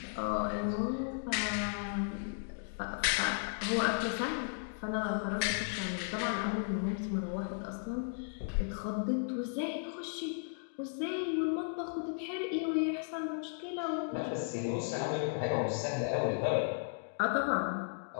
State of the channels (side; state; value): right; silent; digital silence